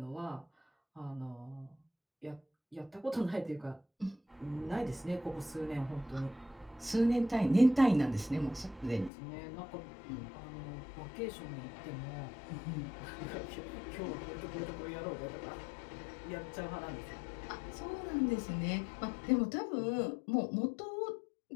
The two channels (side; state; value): right; drops out; at 9.1 s